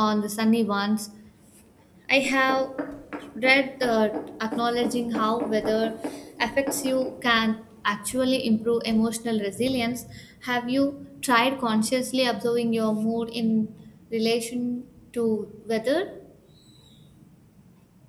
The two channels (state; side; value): identical; both; correlation 1.00